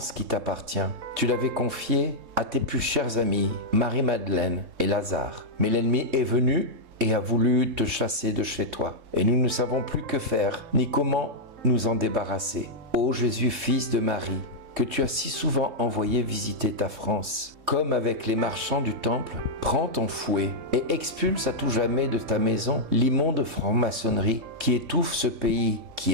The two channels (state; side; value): late; left; 3.3 ms